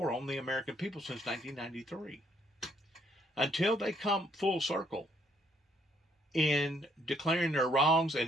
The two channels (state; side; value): normal; both; correlation 0.69